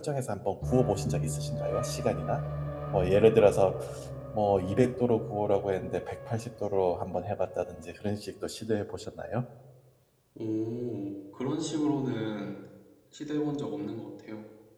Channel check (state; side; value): identical; both; correlation 1.00